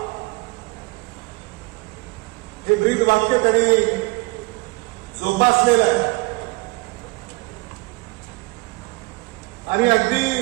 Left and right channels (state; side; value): quieter; left; 24.8 dB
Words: हे ब्रीद वाक्य त्यांनी जोपासलेलं आहे आणि अगदी